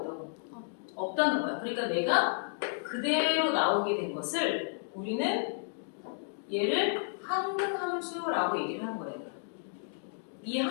없다는 거야. 그러니까 내가 그대로 나오게 된 것을 우리는 얘를 항등함수라고 얘기를 하는 거예요. 이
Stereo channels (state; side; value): silent; right; digital silence